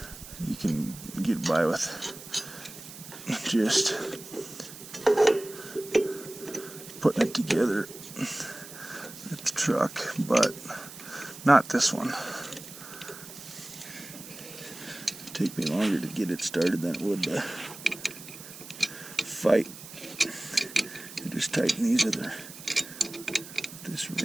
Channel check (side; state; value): right; noise; hiss, 15 dB below the sound